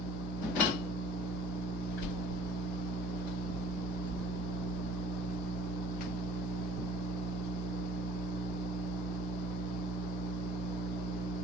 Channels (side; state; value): both; normal; correlation 0.51